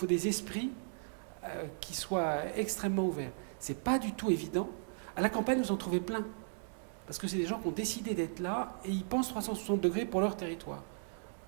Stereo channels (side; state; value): left; silent; digital silence